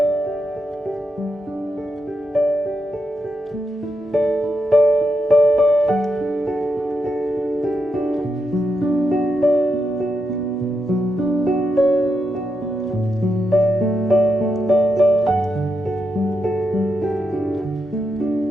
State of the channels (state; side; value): normal; both; correlation 0.84